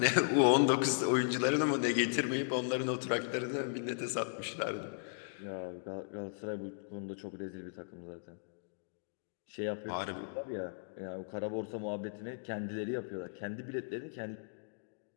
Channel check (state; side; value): silent; right; digital silence